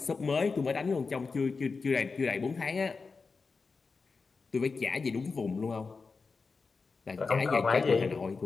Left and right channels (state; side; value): quieter; right; 4.5 dB